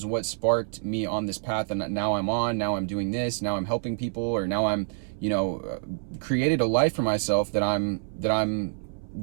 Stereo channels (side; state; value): left; silent; 60 dB below the other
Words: what sparked me on this path. And now I'm doing this, now I'm helping people, or now I'm, created a life for myself that